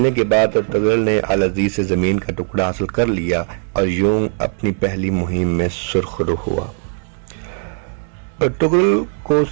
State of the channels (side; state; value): left; silent; 57 dB below the other